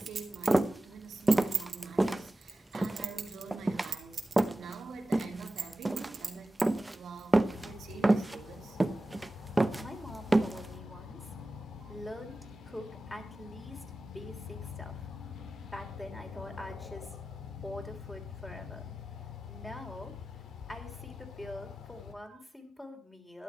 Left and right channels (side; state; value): both; normal; correlation 0.95